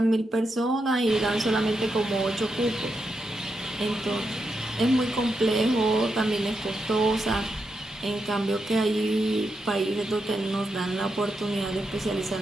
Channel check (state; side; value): normal; both; correlation 0.85